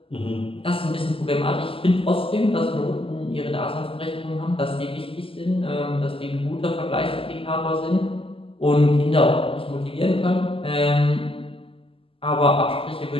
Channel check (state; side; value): late; right; 0.26 ms